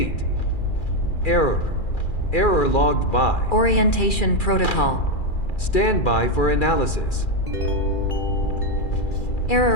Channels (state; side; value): late; right; 2.4 ms